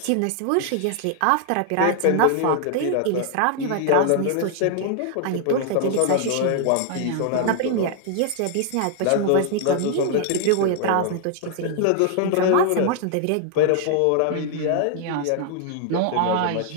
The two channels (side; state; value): both; different; correlation 0.00